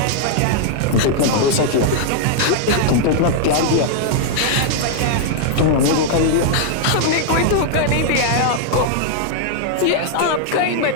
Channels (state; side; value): different; both; correlation 0.00